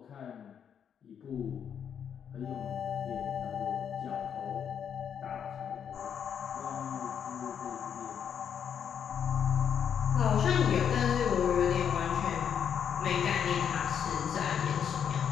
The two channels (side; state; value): right; quieter; 8.1 dB